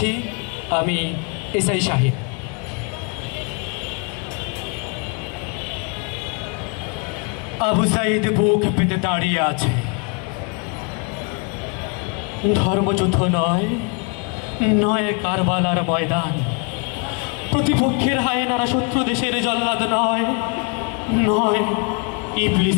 আমি এসআই শাহিন। আবু সাইদ বুক পেতে দাঁড়িয়ে আছে। ধর্মযুদ্ধ নয়, নয় কারবালার ময়দান। প্রতিপক্ষের হায়নারা শত্রু দেশের জল্লাদ নয়, নয়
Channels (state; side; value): quieter; right; 34.0 dB